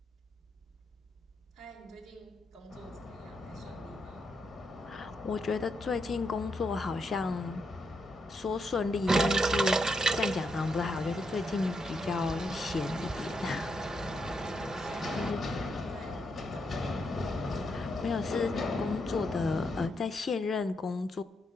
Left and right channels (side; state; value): both; normal; correlation 0.81